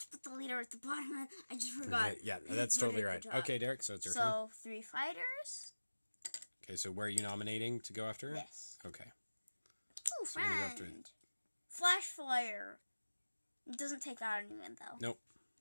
to put the leader at the bottom. I just forgot. Yeah, that's totally right. Okay, Derek, so it's your turn. So 3 fighters. Okay, so where are you nominating to go after? This. Okay. Ooh, friend. Flash fire. It doesn't take out anyone though. Nope.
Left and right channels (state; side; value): inverted; both; correlation -1.00